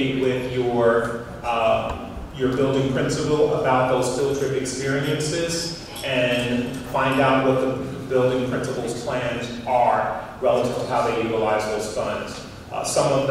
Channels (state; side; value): identical; both; correlation 1.00